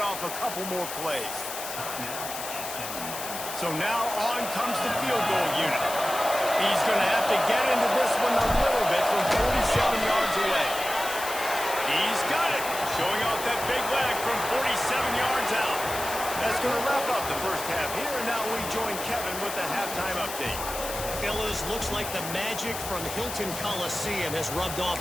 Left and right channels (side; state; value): left; noise; hiss, 8 dB below the sound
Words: off a couple more plays. So now on comes the field goal unit. He's going to have to get into this one a little bit from 47 yards away. He's got it. Showing off that big leg from 47 yards out. That's going to wrap up the 1st half here. And now we join Kevin with the halftime update. Fellas, looks like the magic from Hilton Coliseum has rubbed off